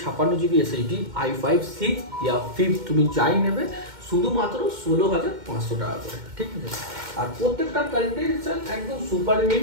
SSD, i5 6 ইয়া 5 তুমি যাই নেবে শুধুমাত্র 16,500 টাকা করে, ঠিক আছে। আর প্রত্যেকটা কন্ডিশন একদম সুপার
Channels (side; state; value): left; late; 2.1 ms